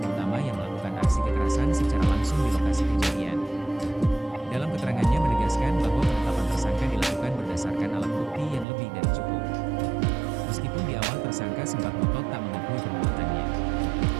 utama yang melakukan aksi kekerasan secara langsung di lokasi kejadian. Dalam keterangannya menegaskan bahwa penetapan tersangka dilakukan berdasarkan alat bukti yang lebih dari cukup. Meskipun di awal tersangka sempat ngotot tak mengakui perbuatannya.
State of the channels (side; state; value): left; drops out; at 8.7 s